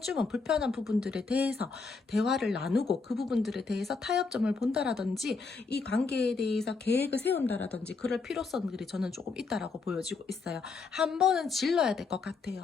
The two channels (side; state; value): right; quieter; 4.5 dB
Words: 불편한 부분들에 대해서 대화를 나누고 그 부분들에 대해서 타협점을 본다라든지 이 관계에 대해서 계획을 세운다라든지 그럴 필요성들이 저는 조금 있다라고 보여지고 있어요. 한 번은 질러야 될 것